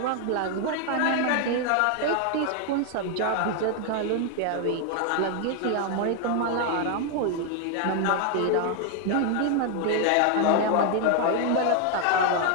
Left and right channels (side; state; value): both; different; correlation 0.00